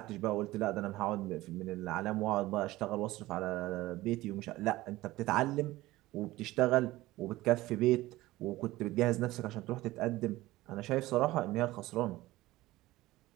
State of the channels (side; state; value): left; quieter; 17.8 dB